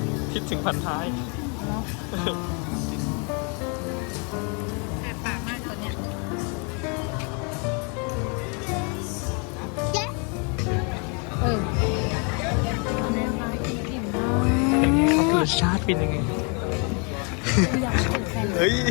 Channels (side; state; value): right; quieter; 35.4 dB